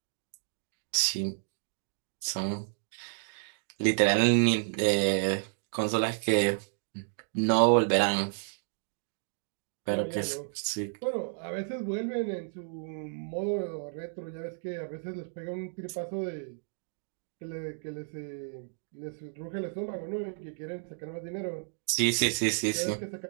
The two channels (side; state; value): left; silent; digital silence